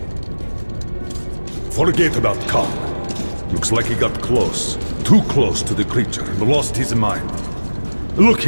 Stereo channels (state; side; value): inverted; both; correlation -1.00